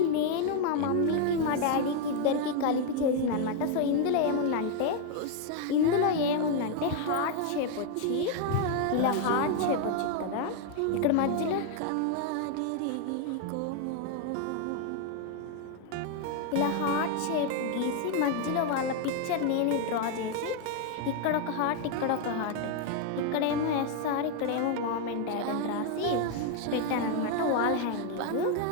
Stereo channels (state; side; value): different; both; correlation 0.00